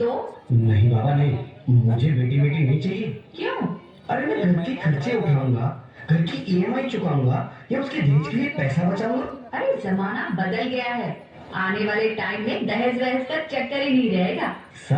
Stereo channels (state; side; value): identical; both; correlation 1.00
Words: नहीं बाबा नहीं, मुझे बेटी बेटी नहीं चाहिए। क्यों? अरे मैं घर के खर्चे उठाऊंगा, घर की ईएमआई चुकाऊंगा या उसके दहेज के लिए पैसा बचाऊंगा। अरे जमाना बदल गया है, आने वाले टाइम में दहेज वहेज का चक्कर ही नहीं रहेगा।